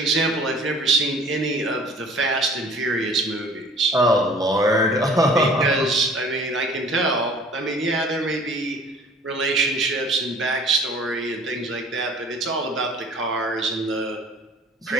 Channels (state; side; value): normal; both; correlation 0.50